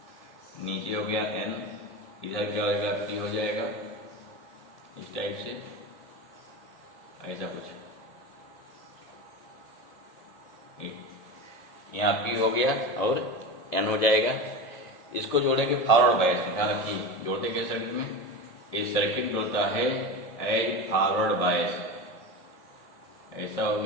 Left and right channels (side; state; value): right; late; 1.7 ms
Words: नीचे हो गया एन, इधर क्या होगा पी हो जाएगा इस टाइप से, ऐसा कुछ यहाँ पी हो गया और एन हो जाएगा। इसको जोड़ेंगे फॉरवर्ड बायस में, ध्यान रखिए जोड़ते क्या सर्किट में, इस सर्किट जोड़ता है एज फॉरवर्ड बायस, ऐसा हो